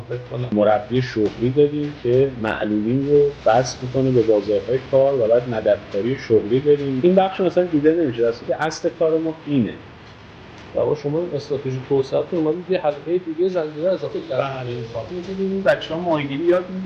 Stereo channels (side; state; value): both; identical; correlation 1.00